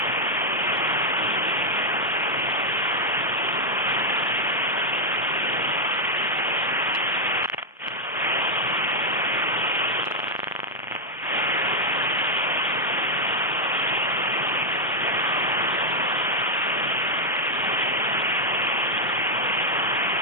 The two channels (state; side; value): normal; both; correlation 0.00